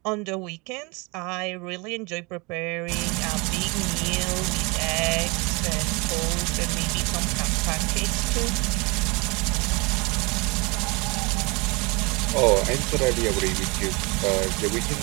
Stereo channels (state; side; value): quieter; left; 28.1 dB